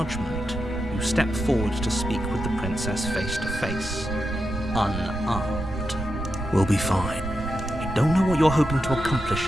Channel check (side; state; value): both; normal; correlation 0.87